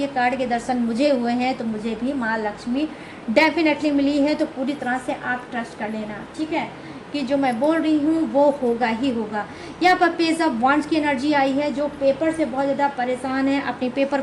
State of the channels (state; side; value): identical; both; correlation 1.00